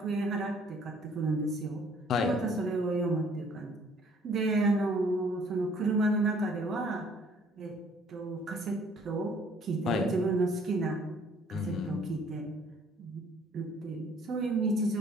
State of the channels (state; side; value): normal; both; correlation 0.59